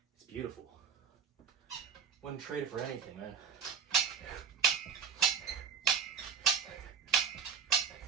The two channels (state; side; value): quieter; left; 6.6 dB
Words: It's beautiful. Wouldn't trade it for anything, man.